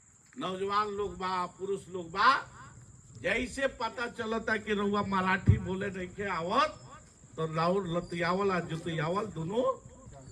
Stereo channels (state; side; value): identical; both; correlation 1.00